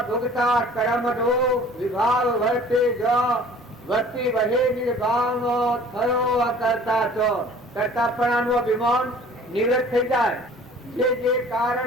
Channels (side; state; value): both; normal; correlation 0.48